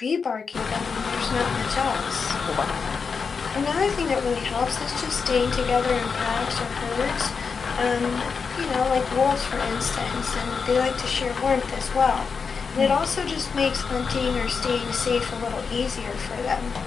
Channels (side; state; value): right; quieter; 5.5 dB